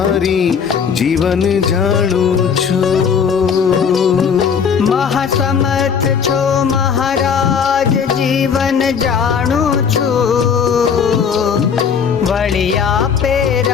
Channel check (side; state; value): right; quieter; 6.7 dB